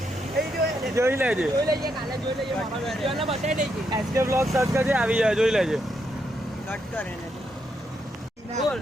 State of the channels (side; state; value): both; normal; correlation 0.79